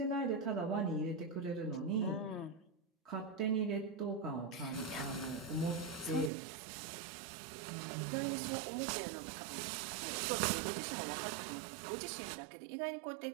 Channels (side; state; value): left; drops out; at 6.3 s